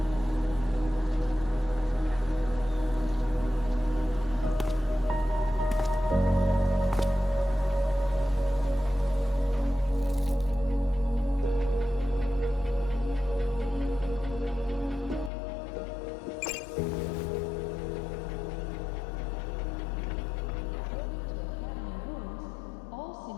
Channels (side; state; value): right; drops out; at 15.3 s